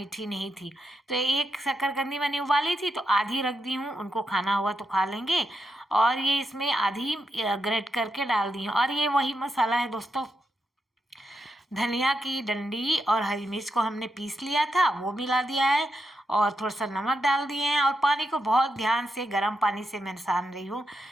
नहीं थी। तो एक शकरकंदी मैंने उबाली थी तो आधी रख दी हूँ, उनको खाना हुआ तो खा लेंगे। और ये इसमें आधी ग्रेट करके डाल दी हूँ। और ये वही मसाला है दोस्तों, धनिया की डंडी और हरी मिर्च को हमने पीस लिया था, वो मिला दिया है, और थोड़ा सा नमक डाल दिए हैं। और पानी को बहुत ध्यान से गर्म पानी से मैं सान रही हूँ।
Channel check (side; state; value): both; normal; correlation 0.84